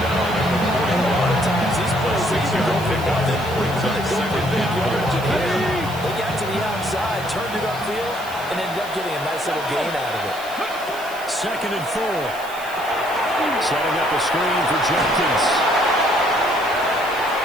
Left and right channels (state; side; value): noise; right; hiss, 17 dB below the sound